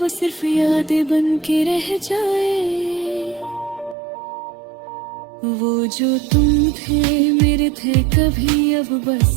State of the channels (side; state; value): left; drops out; at 4.0 s